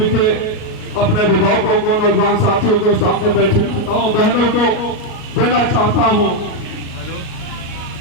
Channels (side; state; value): right; late; 38 ms